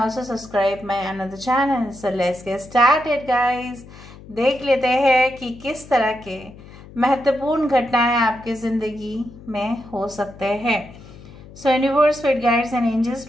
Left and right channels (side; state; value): left; noise; hum, 19 dB below the sound